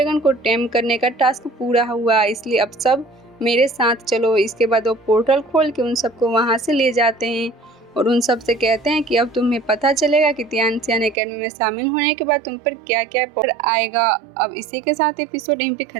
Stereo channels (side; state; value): left; drops out; at 11.2 s